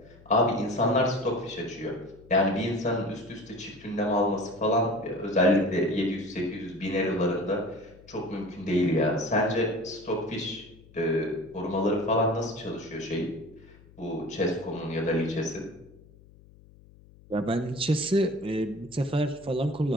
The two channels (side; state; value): left; noise; hum, 24 dB below the sound